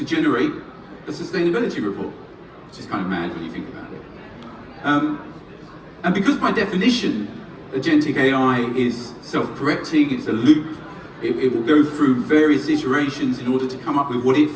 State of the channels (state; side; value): identical; both; correlation 1.00